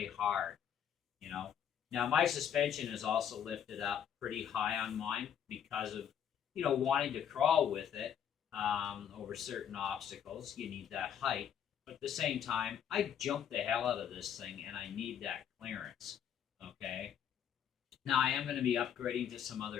hard, you know? Now, my suspension is also lifted up pretty high on mine because of, you know, wanting to crawl with it over certain obstacles. You need that height. But at the same time, I jump the hell out of this thing, and I need that clearance, okay? Now, I am going to be upgrading to some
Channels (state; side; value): quieter; right; 9.0 dB